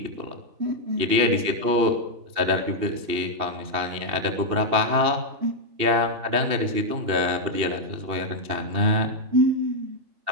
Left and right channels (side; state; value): left; late; 2.8 ms